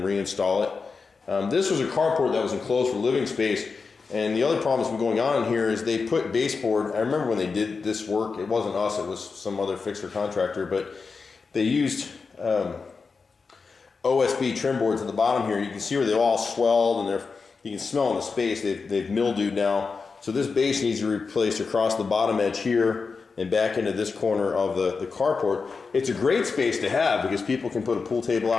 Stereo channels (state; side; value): quieter; right; 4.8 dB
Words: reinstall it. This was a carport that was enclosed for living space. And the other problem that's been going on here is they put baseboard. I remember when they did this work, it wasn't us, it was some other fixer contractor, but they used OSB trim boards at the bottom here. You can see where they're all swelled and you can smell in the space, they've mildewed now. So this base needs to be replaced across the bottom edge here and back into this corner of the carport. It's a great space to have because people can put a pool table